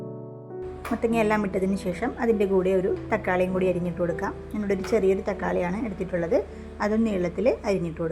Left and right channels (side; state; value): both; identical; correlation 1.00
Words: മത്തങ്ങയെല്ലാം ഇട്ടതിന് ശേഷം അതിൻ്റെ കൂടെ ഒരു തക്കാളിയും കൂടി അരിഞ്ഞിട്ട് കൊടുക്കാം. ഞാനിവിടെ ഒരു ചെറിയൊരു തക്കാളിയാണ് എടുത്തിട്ടുള്ളത്, അതും നീളത്തിൽ അരിഞ്ഞിട്ട്